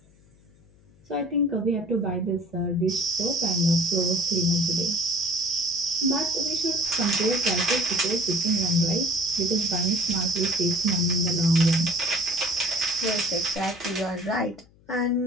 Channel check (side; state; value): left; noise; hum, 29 dB below the sound